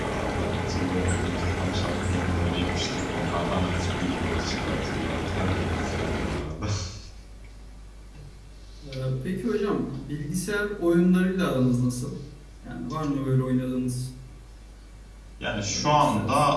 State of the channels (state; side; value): identical; both; correlation 1.00